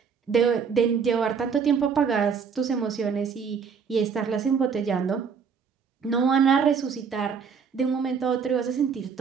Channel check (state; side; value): quieter; left; 6.2 dB